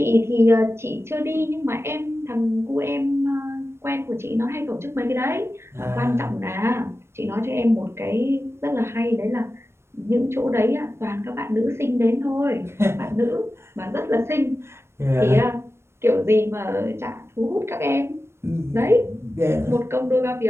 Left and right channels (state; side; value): late; left; 0.12 ms